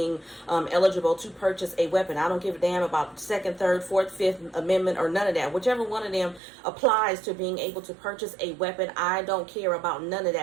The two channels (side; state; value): left; drops out; at 6.4 s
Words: eligible to purchase a weapon. I don't give a damn about Second, Third, Fourth, Fifth Amendment or none of that. Whichever one of them applies to being able to purchase a weapon, I don't care about none of